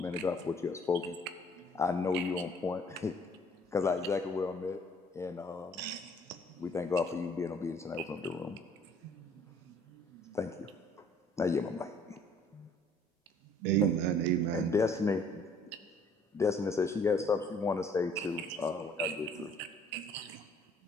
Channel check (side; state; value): both; normal; correlation 0.58